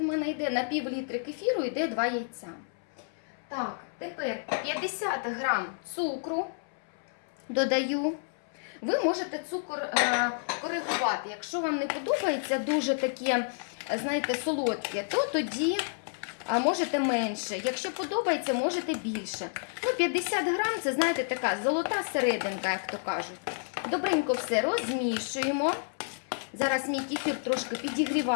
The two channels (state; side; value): silent; right; 58 dB below the other